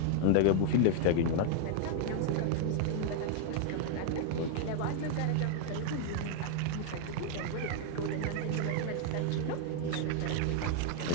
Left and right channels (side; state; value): both; different; correlation 0.00